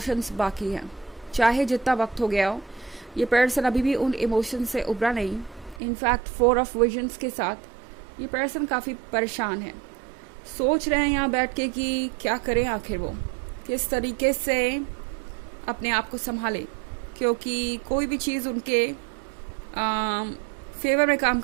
बाकी हैं. चाहे जितना वक्त हो गया हो, ये पर्सन अभी भी उन इमोशंस से उभरा नहीं. इनफैक्ट 4 ऑफ विजन्स के साथ ये पर्सन काफ़ी परेशान है. सोच रहे हैं यहाँ बैठ के कि क्या करें, आखिर वो किस तरीके से अपने आप को संभाले, क्योंकि कोई भी चीज़ उनके फेवर में काम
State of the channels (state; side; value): drops out; left; at 5.8 s